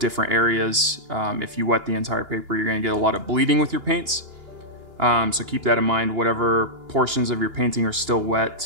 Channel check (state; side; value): late; left; 2.9 ms